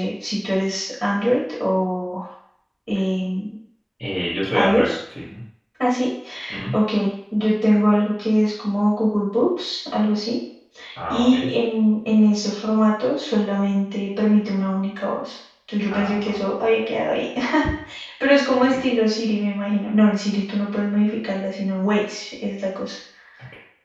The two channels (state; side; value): identical; both; correlation 1.00